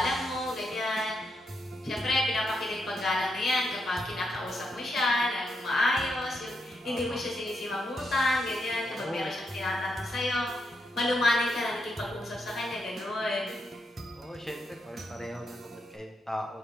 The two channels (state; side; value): normal; both; correlation 0.82